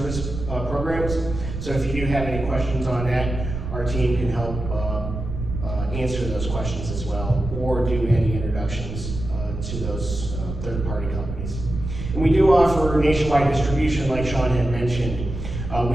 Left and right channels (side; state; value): right; noise; rumble, 6 dB below the sound